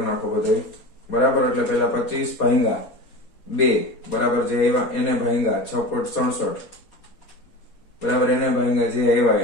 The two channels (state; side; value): late; right; 4.3 ms